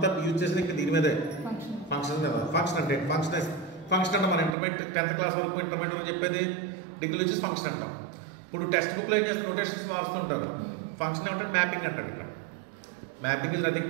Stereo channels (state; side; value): drops out; left; at 4.5 s